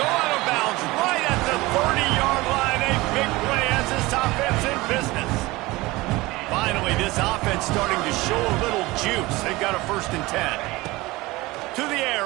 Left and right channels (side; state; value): left; quieter; 20.8 dB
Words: go out of bounds right at the 30-yard line. A big play as this offense in business. Finally, this offense starting to show a little juice. They've got a 1st and 10. To the